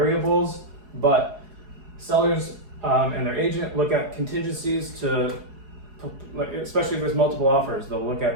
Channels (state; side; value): late; left; 4.7 ms